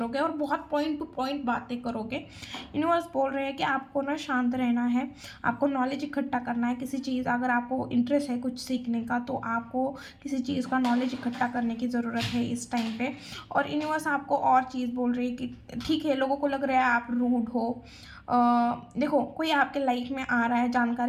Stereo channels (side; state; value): both; identical; correlation 1.00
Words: और बहुत पॉइंट टू पॉइंट बातें करोगे। यूनिवर्स बोल रहे हैं कि आपको ना शांत रहना है, आपको नॉलेज इकट्ठा करना है। किसी चीज़, अगर आपको इंटरेस्ट है कुछ सीखने का तो आपको किसी चीज़ का नॉलेज इकट्ठा करने की ज़रूरत है इस टाइम पे। और यूनिवर्स आपको और चीज़ बोल रही है कि ठीक है, लोगों को लग रहा है आप रूड हो। देखो कोई आपके लाइफ में आ रहा है